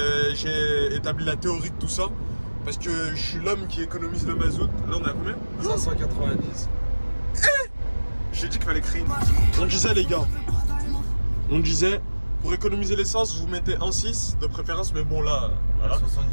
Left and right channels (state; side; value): inverted; both; correlation -1.00